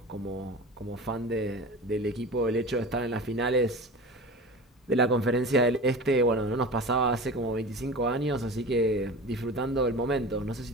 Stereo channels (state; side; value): normal; both; correlation 0.33